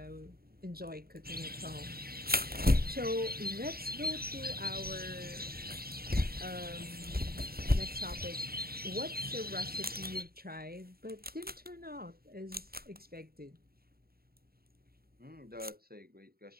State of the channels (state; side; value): late; left; 0.44 ms